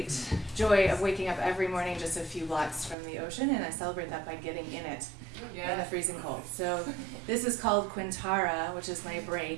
joy of waking up every morning just a few blocks from the ocean, and I celebrate that by getting in it in the freezing cold. So this is called Quintara, which is my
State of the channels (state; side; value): drops out; left; at 3.0 s